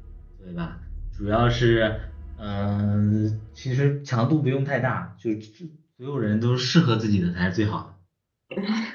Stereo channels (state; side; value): identical; both; correlation 1.00